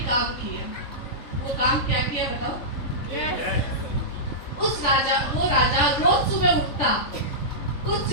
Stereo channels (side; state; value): right; late; 3.6 ms